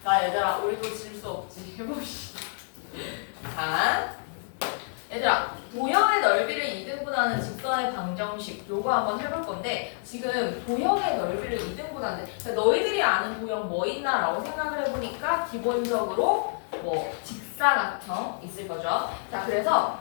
나 얘들아, 우리도 질 수 없지. 해봅시다. 자, 얘들아, 도형의 넓이를 2등분하는 직선의 방정식 요거 한번 해볼 건데 지금 도형의 넓이를 2등분하는데 너희들이 아는 도형 뭐 있나 라고 생각을 해보니까 기본적으로 뭐 직사각형 있을 거죠. 자, 그래서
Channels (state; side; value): silent; right; 59 dB below the other